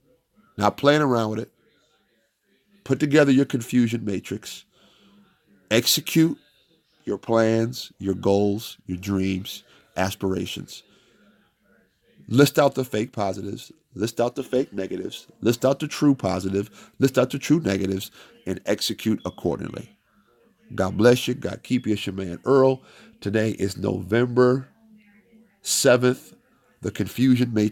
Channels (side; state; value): both; identical; correlation 1.00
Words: Not playing around with it. Put together your confusion matrix. Execute your plans, your goals, your dreams, aspirations. List out the fake positives. List out the fake negatives. List out the true positive. List out the true negatives and execute accordingly. God bless you. God keep you. It's your man Earl. Today is November 7th. The Confusion